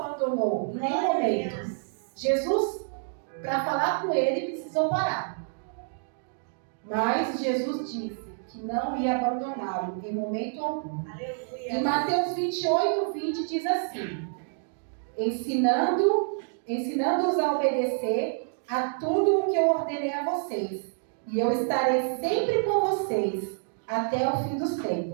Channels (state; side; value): silent; left; digital silence